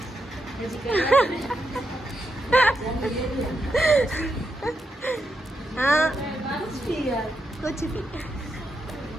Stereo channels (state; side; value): normal; both; correlation 0.84